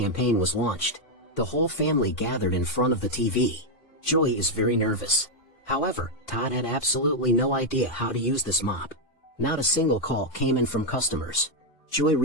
was launched. The whole family gathered in front of the TV. Joy is very nervous. However, Todd had absolutely no idea how to use this mop. Not a single call came in from customers. Joy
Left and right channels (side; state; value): right; late; 4.1 ms